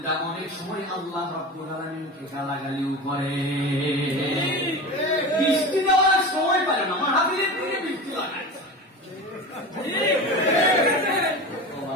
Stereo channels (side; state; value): both; normal; correlation 0.29